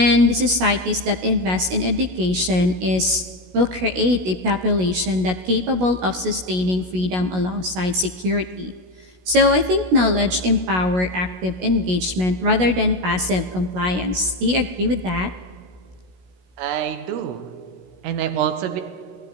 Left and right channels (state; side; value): late; left; 16 ms